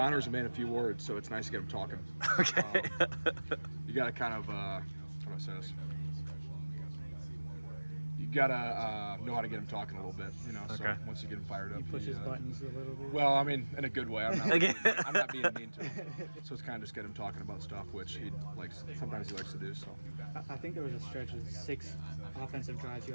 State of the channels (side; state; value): both; inverted; correlation -1.00